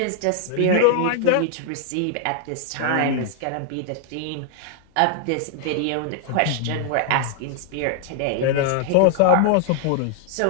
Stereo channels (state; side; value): different; both; correlation -0.01